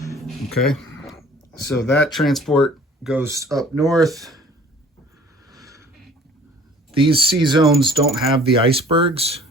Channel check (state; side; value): normal; both; correlation 0.51